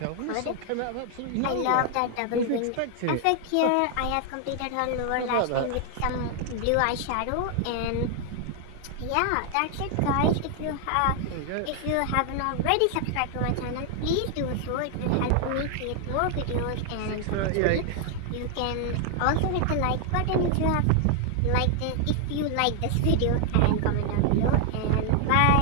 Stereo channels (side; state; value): both; different; correlation 0.00